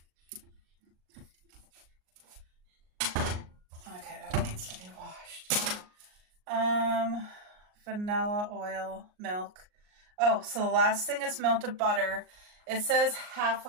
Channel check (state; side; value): late; left; 38 ms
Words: Okay, that needs to be washed. Vanilla oil, milk. Oh, so the last thing is melted butter. It says half